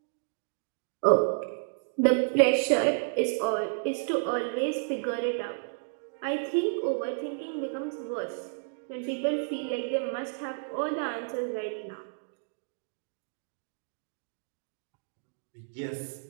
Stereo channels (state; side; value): silent; left; digital silence